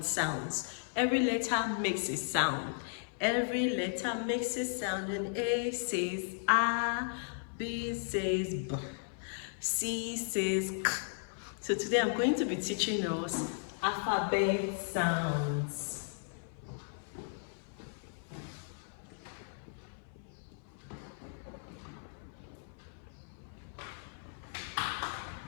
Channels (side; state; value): right; silent; 54 dB below the other